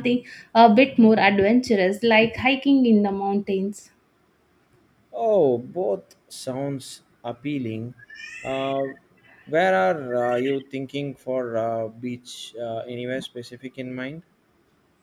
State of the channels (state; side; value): identical; both; correlation 1.00